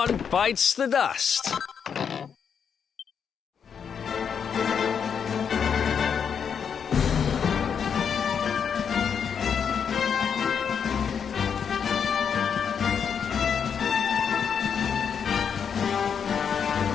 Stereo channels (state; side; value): quieter; right; 7.2 dB